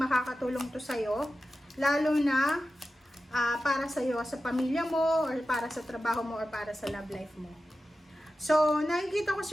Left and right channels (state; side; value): normal; both; correlation 0.93